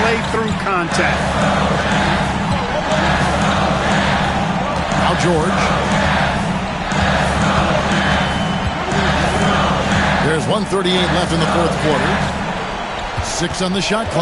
through contact. Now George. There's 1:38 left in the fourth quarter. 6 on the shot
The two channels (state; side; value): identical; both; correlation 1.00